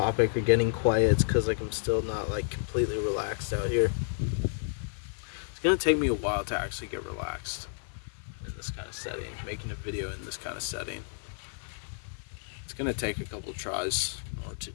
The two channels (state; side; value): silent; right; 57 dB below the other